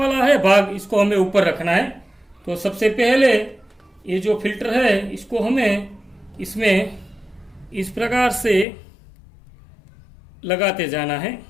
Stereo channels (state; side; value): drops out; right; at 8.7 s